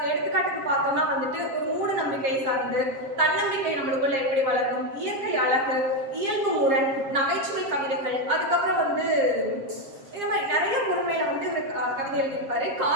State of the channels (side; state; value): left; late; 7.4 ms